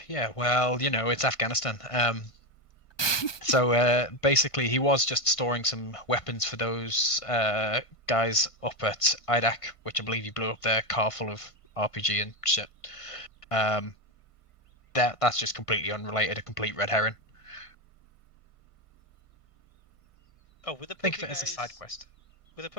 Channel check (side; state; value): right; late; 1.5 ms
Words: Yeah. Well, it's Afghanistan. So basically, he was just storing some weapons for those guys up at IDAC, which I believe he blew up their car full of RPG and shit. That's just completely unrelated, a complete red herring. Oh, with the Think poker of it as a guys... side quest. Were the